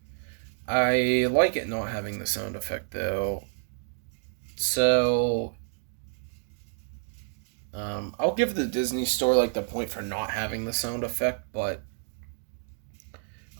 I like it not having the sound effect though. So I'll give the Disney Store like the point for not having the sound effect, but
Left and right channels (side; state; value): left; silent; 59 dB below the other